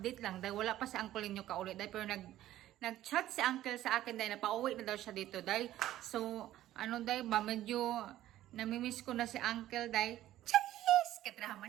lang dahil wala pa si uncle ninyo kauli dahil pero nag-chat si uncle sa akin dahil napauwi na daw siya dito dahil so ano dahil ba medyo namimiss ko na si uncle dahil cheese kadrama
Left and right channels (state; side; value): quieter; left; 13.8 dB